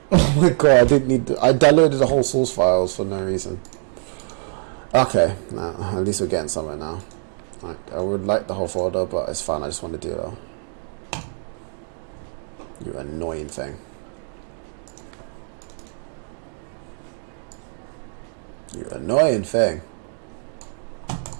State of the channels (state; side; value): silent; left; digital silence